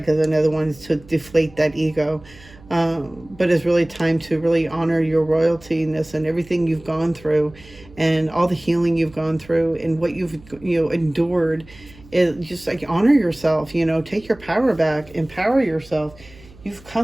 another one to deflate that ego. But it's really time to really honor your royaltiness and everything you've gone through and all the healing you've gone through and what you've endured. Is just like honor yourself, take your power back, empower yourself. You've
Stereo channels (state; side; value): noise; right; hum, 23 dB below the sound